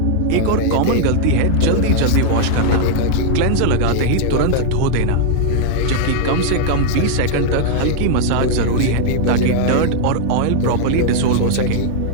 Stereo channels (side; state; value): both; different; correlation -0.01